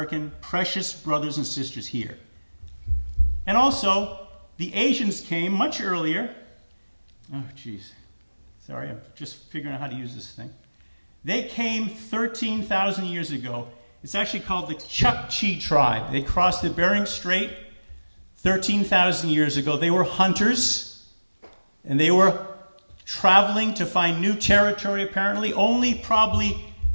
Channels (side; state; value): both; inverted; correlation -1.00